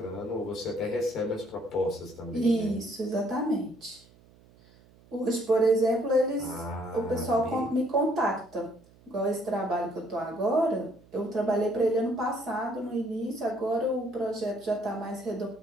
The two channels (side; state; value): right; noise; hum, 27 dB below the sound